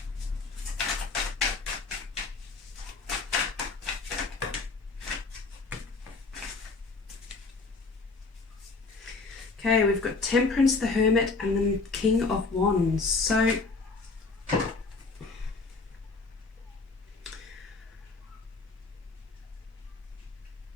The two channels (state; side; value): quieter; right; 4.0 dB